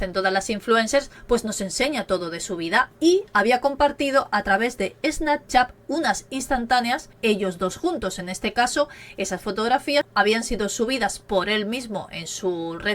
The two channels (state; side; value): identical; both; correlation 1.00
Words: todas las influencers, pues nos enseña todo de su vida y había compartido a través de Snapchat unas instantáneas, ellos dos juntos. En este caso, esas fotografías habían sido subidas por él mismo en su